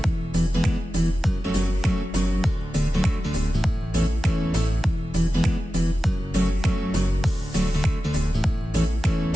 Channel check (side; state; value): both; normal; correlation 0.93